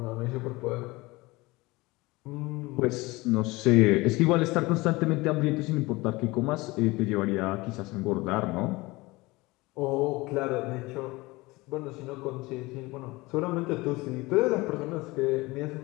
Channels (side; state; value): right; quieter; 22.1 dB